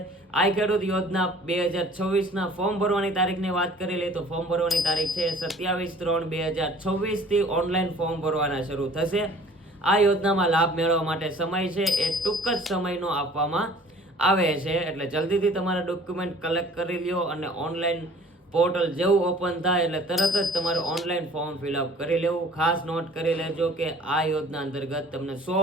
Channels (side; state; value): both; normal; correlation 0.50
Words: આ ખેડૂત યોજના 2024 ના ફોર્મ ભરવાની તારીખની વાત કરી લઈએ તો ફોર્મ ભરવાની તારીખ છે 27/3/2024 થી ઓનલાઈન ફોર્મ ભરવાના શરૂ થશે. આ યોજનામાં લાભ મેળવવા માટે સમય છે એ ટૂંક જ સમયનો આપવામાં આવે છે, એટલે જલ્દીથી તમારા ડોક્યુમેન્ટ કલેક્ટ કરી લ્યો અને ઓનલાઈન પોર્ટલ જેવું ઓપન થાય એટલે તરત જ તમારે ઓનલાઈન ફોર્મ ફિલઅપ કરી લેવું. ખાસ નોટ કરી લેજો કે આ યોજના અંતર્ગત તમને 100